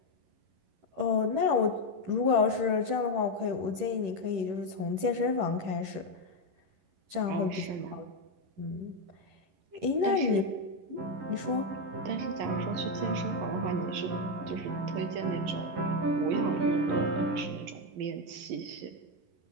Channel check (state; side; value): late; left; 10 ms